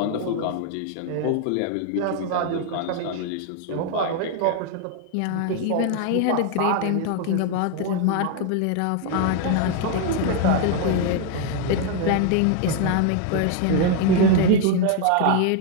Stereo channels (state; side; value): different; both; correlation 0.01